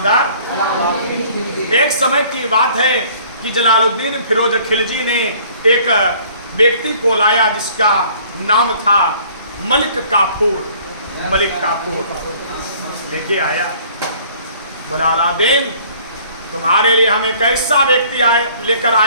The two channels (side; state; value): both; inverted; correlation -0.55